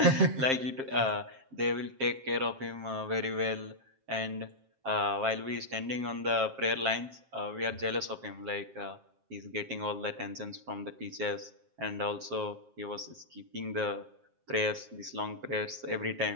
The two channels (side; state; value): left; late; 7.5 ms